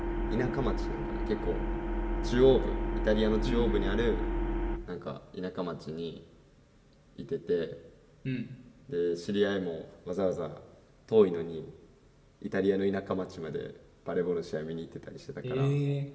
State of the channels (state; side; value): identical; both; correlation 1.00